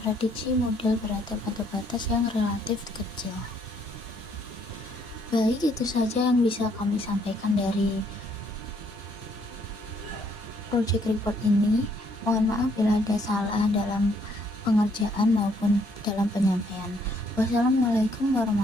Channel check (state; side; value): normal; both; correlation 0.68